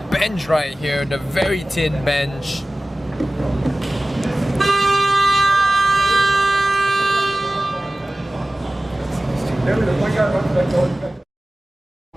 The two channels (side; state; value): both; normal; correlation 0.97